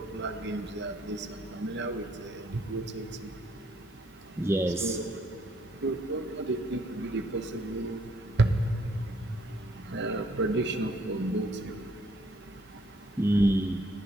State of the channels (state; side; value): normal; both; correlation 0.66